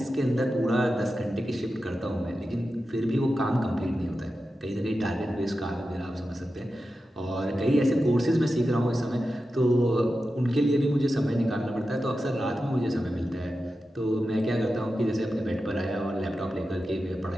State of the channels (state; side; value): normal; both; correlation 0.91